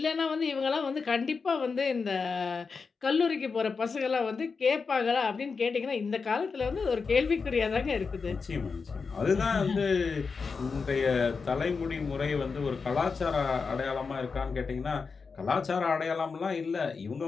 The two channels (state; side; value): quieter; right; 5.0 dB